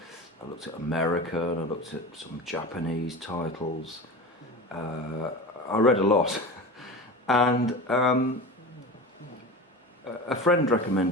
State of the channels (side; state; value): both; normal; correlation 0.30